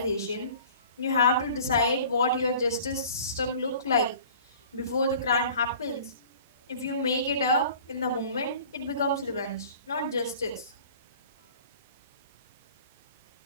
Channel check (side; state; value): both; inverted; correlation -0.47